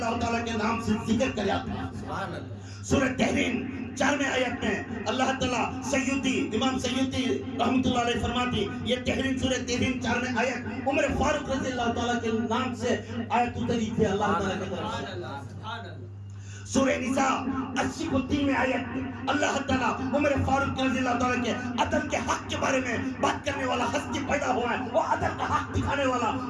تعالیٰ کے نام سے ذکر کرا تھا. سورہ تحریم 4 آیت میں اللہ تعالیٰ سیوطی امام سیوطی رحمت اللہ علیہ فرماتی، یہ تحریم سورہ تحریم 4 آیت عمر فاروق رضی اللہ تعالیٰ کے نام سے آیت اتری تھی اللہ تعالیٰ کی طرف سے. سورہ نساء 83 آیت اللہ تعالیٰ عمر فاروق رضی اللہ تعالیٰ کے عدل کے حق کے بارے میں بات کرنے والا ہستی پیدا ہوا ہے، وہ عدل کا حق دکھانے والا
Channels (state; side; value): identical; both; correlation 1.00